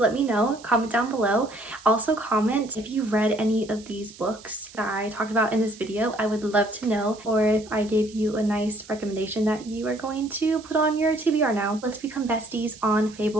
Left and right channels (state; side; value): noise; right; hiss, 20 dB below the sound